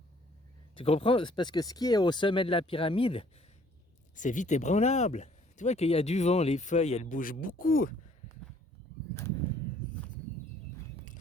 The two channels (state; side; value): normal; both; correlation 0.60